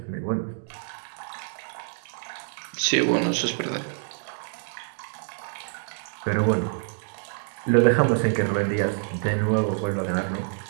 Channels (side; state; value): left; silent; digital silence